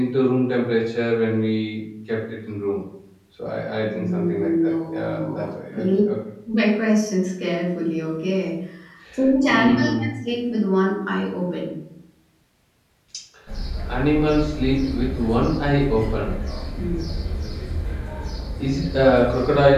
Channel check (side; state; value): both; identical; correlation 1.00